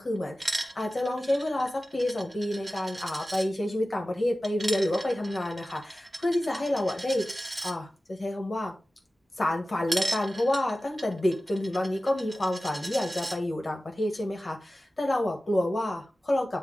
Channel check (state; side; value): normal; both; correlation 0.96